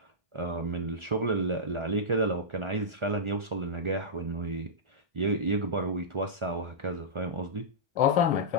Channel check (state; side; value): late; left; 1.4 ms